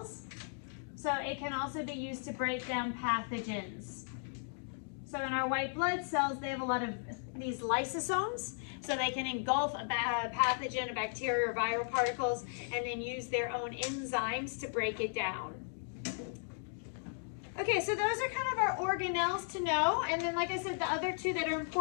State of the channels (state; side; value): silent; right; digital silence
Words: So it can also be used to break down pathogens. So in our white blood cells, they have a lot of these lysosomes. So they can engulf a pathogen, a bacteria, or viral particles, and then use their own enzymes to break it down. Okay, so those are kind of our organelles to know. And then, like I said, the other two that are